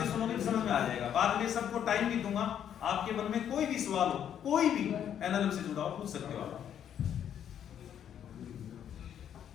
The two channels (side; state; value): right; quieter; 9.4 dB